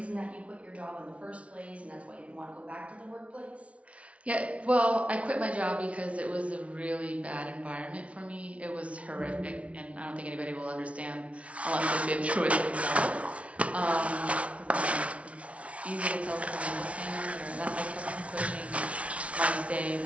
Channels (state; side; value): late; left; 0.063 ms